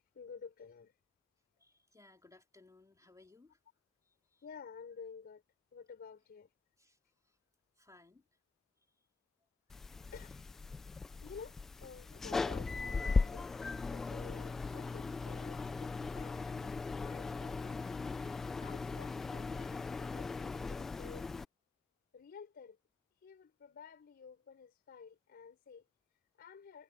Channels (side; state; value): right; quieter; 3.9 dB